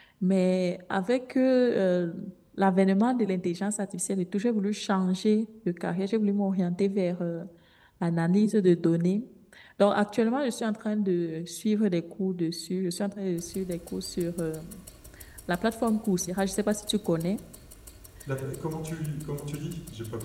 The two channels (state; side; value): identical; both; correlation 1.00